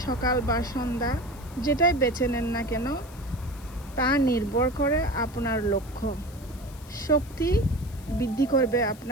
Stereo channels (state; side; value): noise; left; hiss, 22 dB below the sound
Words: সকাল বা সন্ধ্যা যেটাই বেছে নেন না কেন, তা নির্ভর করে আপনার লক্ষ্য। শক্তি বৃদ্ধি করবে